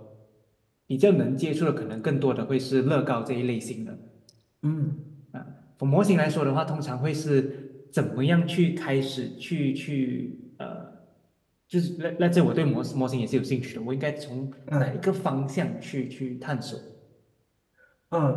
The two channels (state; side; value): identical; both; correlation 1.00